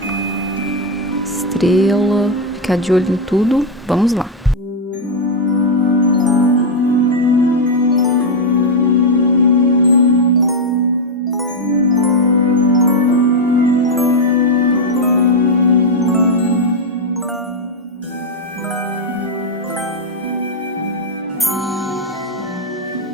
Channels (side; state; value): both; normal; correlation 0.02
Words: estrela, ficar de olho em tudo. Vamos lá.